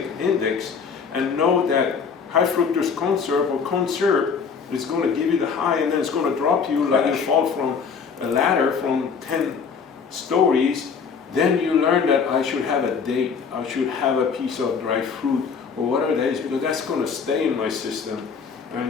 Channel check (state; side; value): quieter; right; 5.9 dB